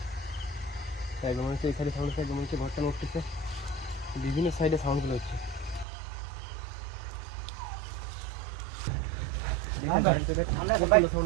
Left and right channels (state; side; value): drops out; left; at 5.9 s